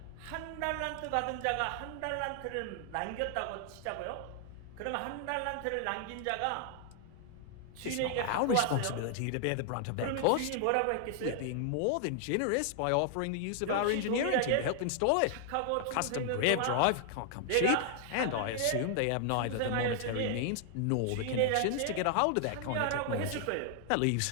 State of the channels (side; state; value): both; different; correlation 0.00